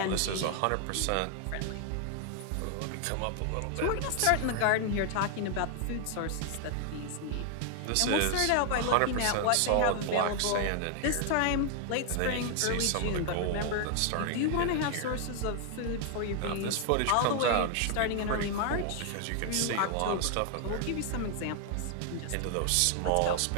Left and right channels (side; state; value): both; different; correlation 0.00